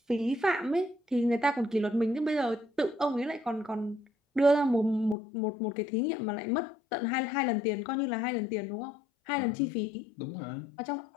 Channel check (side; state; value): right; drops out; at 5.2 s